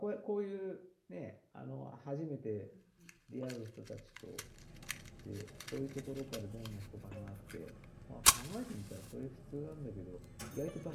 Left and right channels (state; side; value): identical; both; correlation 1.00